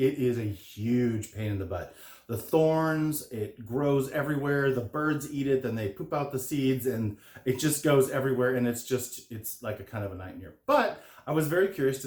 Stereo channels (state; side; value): identical; both; correlation 1.00